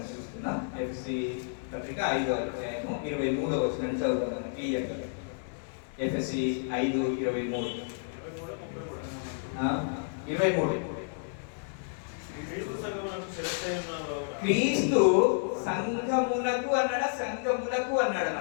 చూస్తున్నాం. ఎఫ్ఎస్సి పత్రిక 5వ అధ్యాయము 23వ వచనాన్ని చదువుతాం క్లియర్గా. ఎఫ్ఎస్సి 5:23. క్రీస్తు సంఘమునకు అన్నాడా, సంఘములకు అన్నాడు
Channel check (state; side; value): silent; right; digital silence